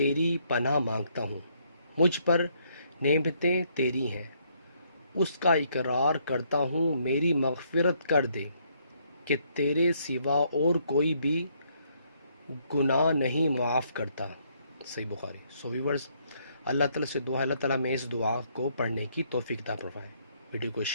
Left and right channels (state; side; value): inverted; both; correlation -0.70